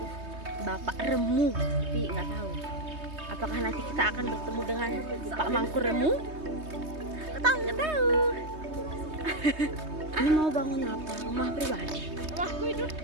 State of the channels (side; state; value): left; late; 3.2 ms